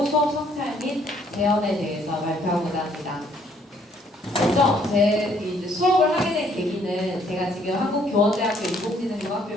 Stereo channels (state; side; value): normal; both; correlation 0.65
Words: 수업 성찰 및 재현에 대해서 발표하고자 합니다. 먼저 제 이제 수업을 하게 된 계기는 제가 지금 한국교원대학교